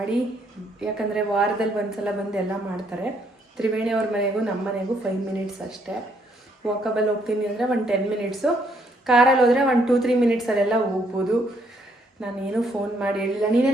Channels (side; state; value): both; normal; correlation 0.70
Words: ಯಾಕಂದರೆ ವಾರದಲ್ಲಿ ಒಂದ್ಸಲ ಬಂದು ಎಲ್ಲ ಮಾಡ್ತಾರೆ. ತ್ರಿವೇಣಿ ಅವ್ರ ಮನೆಗೂ ನಮ್ಮ ಮನೆಗೂ 5 ಮಿನಿಟ್ಸ್ ಅಷ್ಟೇ. ವಾಕಬಲ್ ಹೋಗ್ತೀನಿ ಅಂದರೆ 10 ಮಿನಿಟ್ಸು, ಕಾರಲ್ಲಿ ಹೋದರೆ 2-3 ಮಿನಿಟ್ಸಲ್ಲೆಲ್ಲ ಹೋಗ್ಬೋದು. ನಾನೇನು ಫೋನ್ ಮಾಡಿ ಹೇಳಿಲ್ಲ.